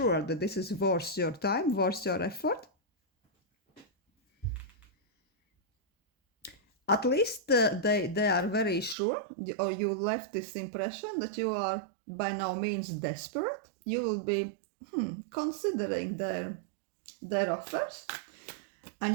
that this is worth your time, worth your effort. At least they are very sure, or you left this impression that you are by no means desperate. You will be considering their offers,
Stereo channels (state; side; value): drops out; left; at 9.0 s